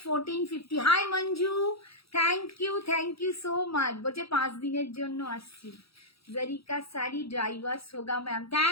1450। Hi Manju, thank you so much. বলছে 5 দিনের জন্য আসছি। জরিকা শাড়ি ড্রাইভার্স হোগা ম্যাম,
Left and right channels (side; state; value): right; late; 0.77 ms